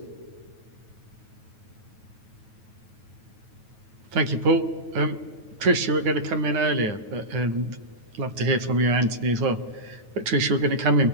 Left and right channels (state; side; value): late; left; 9.2 ms